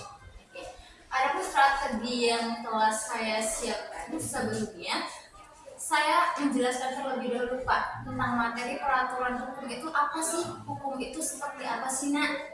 Adapun strategi yang telah saya siapkan sebelumnya, saya menjelaskan terlebih dahulu Pak tentang materi peraturan hukum itu apa sih, hukum itu seperti apa sih Nak,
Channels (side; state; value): both; identical; correlation 1.00